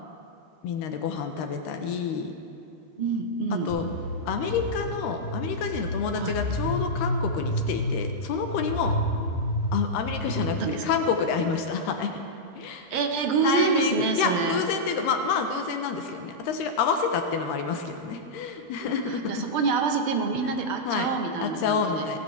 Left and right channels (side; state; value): right; late; 13 ms